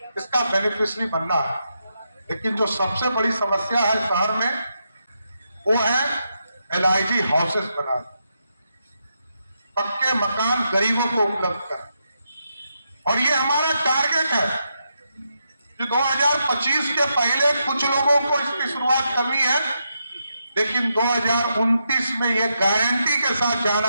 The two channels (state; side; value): inverted; both; correlation -0.83